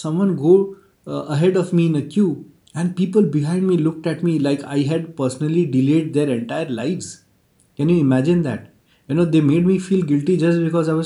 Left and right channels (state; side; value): identical; both; correlation 1.00